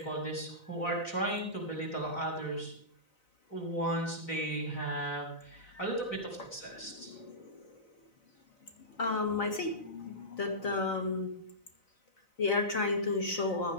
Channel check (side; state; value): right; late; 4.0 ms